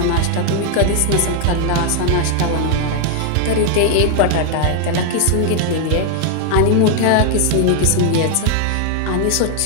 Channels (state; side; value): different; both; correlation 0.00